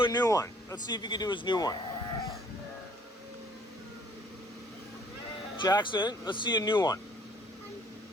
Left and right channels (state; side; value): normal; both; correlation 0.59